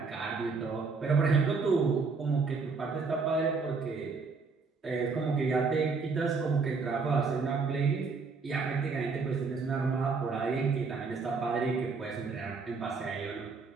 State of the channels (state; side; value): quieter; left; 4.6 dB